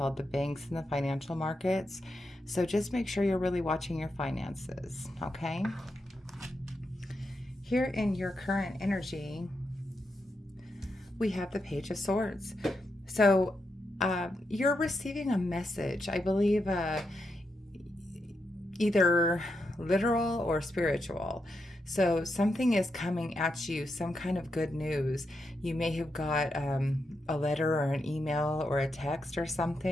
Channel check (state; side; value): normal; both; correlation 0.84